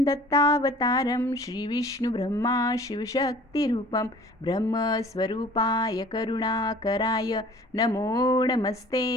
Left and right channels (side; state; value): both; normal; correlation 0.48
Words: दत्तावतारं श्री विष्णु ब्रह्मा शिवशक्तिरूपं ब्रह्मस्वरूपाय करुणाकराय नमो